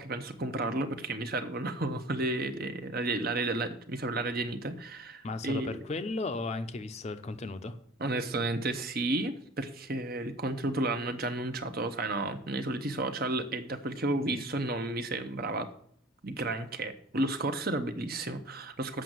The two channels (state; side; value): normal; both; correlation 0.44